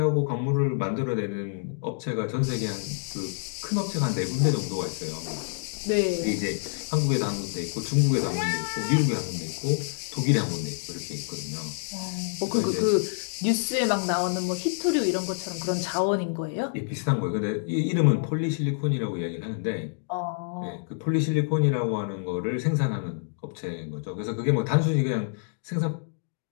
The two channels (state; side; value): silent; right; digital silence